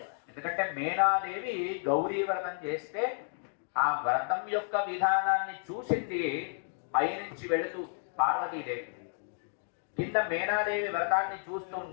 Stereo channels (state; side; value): silent; right; 57 dB below the other